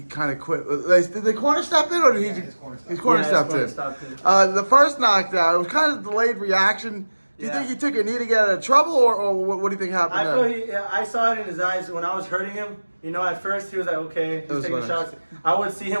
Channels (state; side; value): inverted; both; correlation -1.00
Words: kind of quit. Did the corner step in, or did he? His corner stepped in. The first knockdown, it was kind of delayed reaction. Do you think he took a knee to get out of trouble, or what do you think happened there? I saw it in his eyes when I was hurting him. You know, at first he was like, okay, he's taking shots. I would see